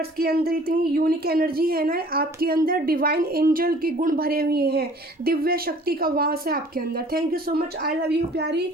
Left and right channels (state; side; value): normal; both; correlation 0.52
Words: के अंदर इतनी यूनिक एनर्जी है ना, आपके अंदर डिवाइन एंजल के गुण भरे हुए हैं, दिव्य शक्ति का वास है आपके अंदर। Thank you so much, I love you प्यारी